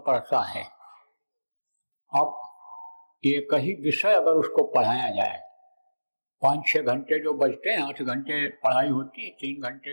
पढ़ता है, अब एक ही विषय अगर उसको पढ़ाया जाए, 5-6 घंटे जो बचते हैं, 8 घंटे पढ़ाई होती है, 3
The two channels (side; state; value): both; inverted; correlation -1.00